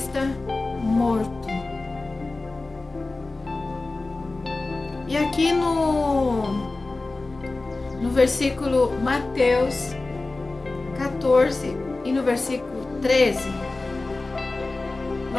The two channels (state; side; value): quieter; right; 3.3 dB